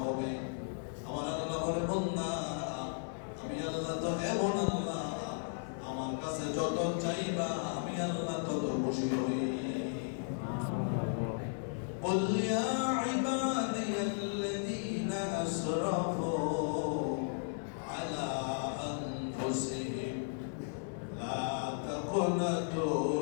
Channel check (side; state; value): right; silent; digital silence